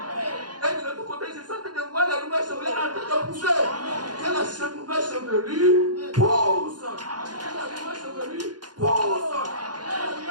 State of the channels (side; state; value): left; late; 0.70 ms